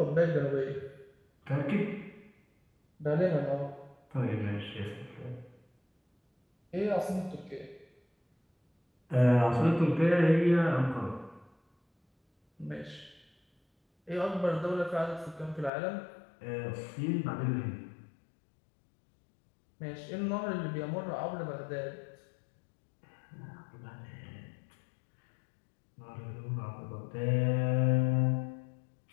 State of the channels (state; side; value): drops out; right; at 15.7 s